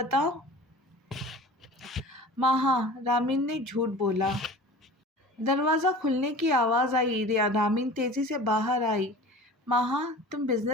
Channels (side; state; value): both; normal; correlation 0.39